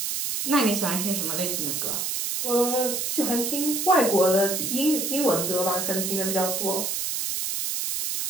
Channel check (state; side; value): noise; right; hiss, 1 dB below the sound